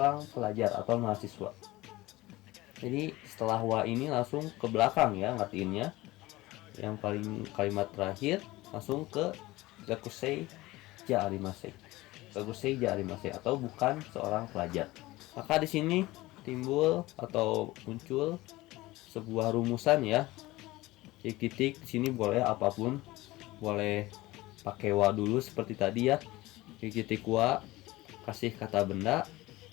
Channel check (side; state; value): right; quieter; 19.2 dB